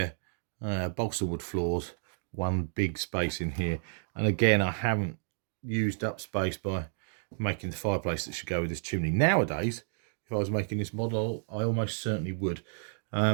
balsa wood floors, one big space in here. And again, I haven't used up space by making the fireplace that should go with this chimney. Nowadays, if I was making this model, I almost certainly would.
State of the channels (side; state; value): left; silent; digital silence